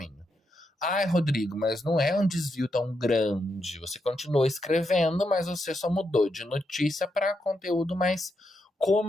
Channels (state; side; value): normal; both; correlation 0.82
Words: Ai, Rodrigo, mas não é um desvio tão grande. Você continuou escrevendo, mas você só mudou de notícia para conteúdo mais